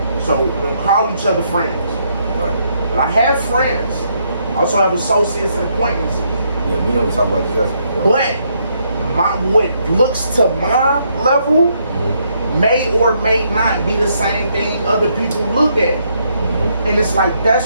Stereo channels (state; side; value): inverted; both; correlation -0.74